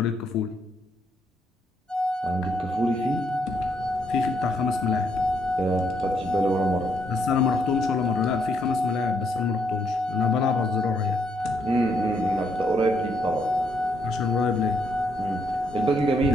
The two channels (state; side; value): normal; both; correlation 0.74